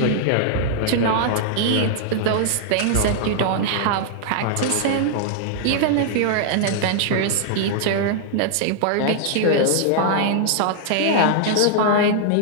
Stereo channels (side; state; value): both; different; correlation -0.01